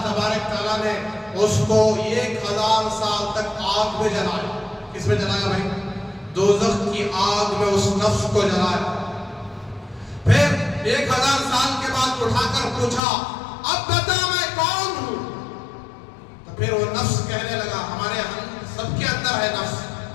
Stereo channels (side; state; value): right; drops out; at 13.0 s